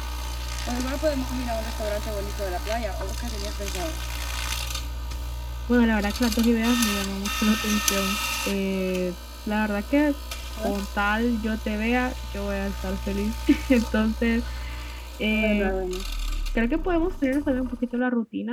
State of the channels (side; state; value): both; identical; correlation 1.00